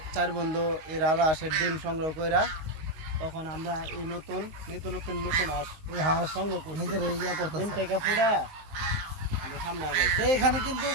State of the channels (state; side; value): late; left; 19 ms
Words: 4 বন্ধু এই রাজা হাঁসের ডিম সংগ্রহ কইরা তখন আমরা এই নতুন হাঁস এই হাঁস সংগ্রহ করি, নিজের ইয়া করতে। ডিম থেকে ফুটা আমরা সামনে আগাইছি। এখানে কিন্তু